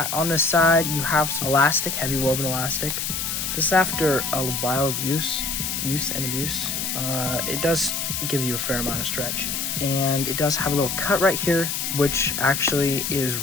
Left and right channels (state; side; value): noise; left; hiss, 2 dB below the sound